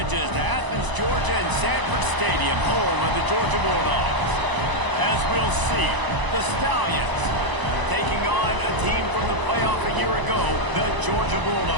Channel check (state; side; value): late; left; 1.0 ms